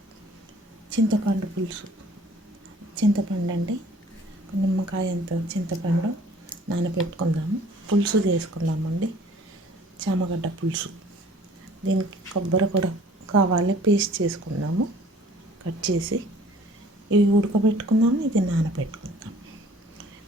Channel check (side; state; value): both; normal; correlation 0.53